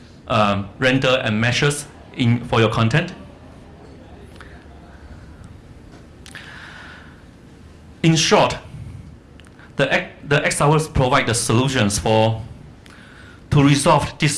render and meshes for your content. In short, the XRWorks provide the solutions to resolve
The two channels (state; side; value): identical; both; correlation 1.00